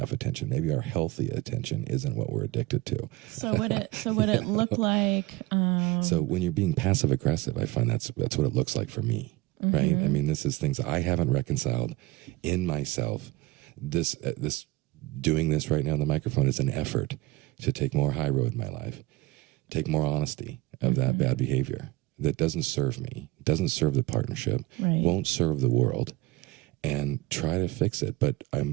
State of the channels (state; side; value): quieter; left; 19.0 dB